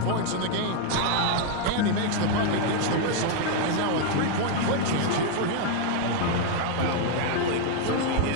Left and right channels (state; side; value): different; both; correlation 0.00